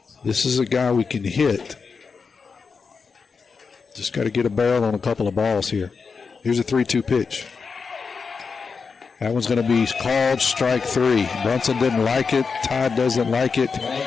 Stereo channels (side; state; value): right; quieter; 5.2 dB